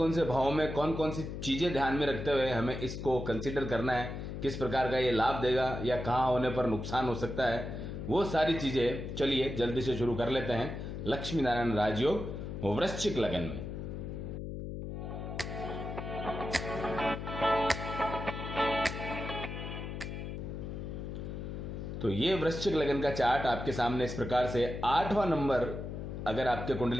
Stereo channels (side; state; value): left; noise; hum, 6 dB below the sound